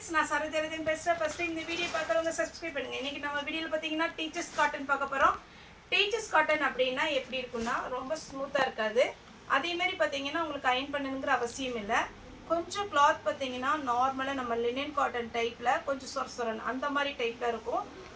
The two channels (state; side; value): identical; both; correlation 1.00